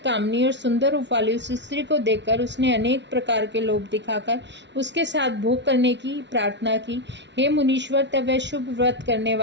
और सुंदर रूप वाली उस स्त्री को देखकर उसने अनेक प्रकार के लोभ दिखाकर उसके साथ भोग करने की प्रार्थना की। हे मुनीश्वर, तब वह शुभ व्रत करने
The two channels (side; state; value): left; late; 0.51 ms